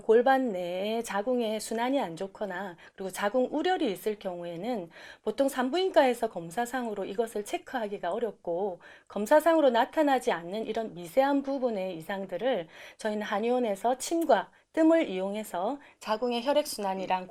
골반 내에 자궁의 순환이 안 좋거나 그리고 자궁 우열이 있을 경우에는 보통 산부인과에서 검사상으로 이것을 체크하기가 어렵고, 검사상으로 나타나지 않는 이런 미세한 부분의 이상들을 저희는 한의원에서 침과 뜸을 이용해서 자궁의 혈액순환이랑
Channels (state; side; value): identical; both; correlation 1.00